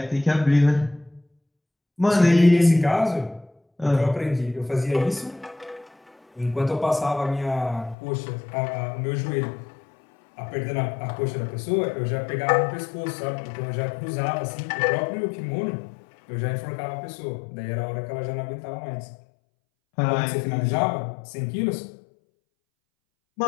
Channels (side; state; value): right; drops out; at 8.0 s